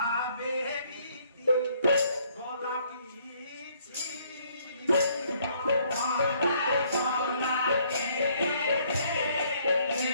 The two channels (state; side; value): inverted; both; correlation -0.65